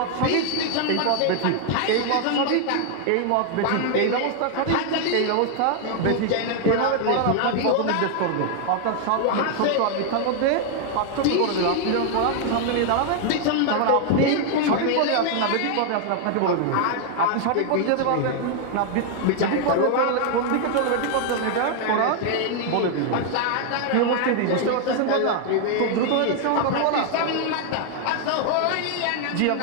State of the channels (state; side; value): different; both; correlation 0.00